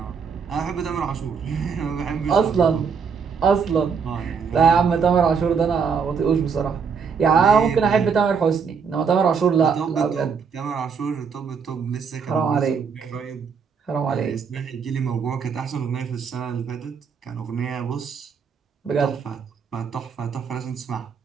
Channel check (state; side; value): quieter; left; 6.1 dB